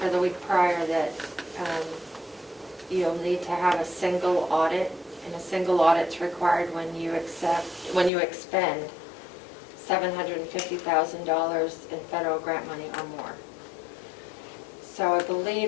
or the week prior, that you'll need to have a single audit, and a single audit's required when you expend $750,000 in federal grant money or more. So I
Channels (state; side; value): drops out; right; at 8.1 s